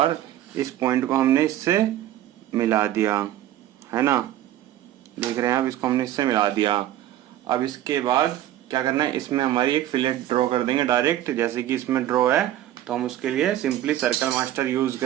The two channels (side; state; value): left; quieter; 12.9 dB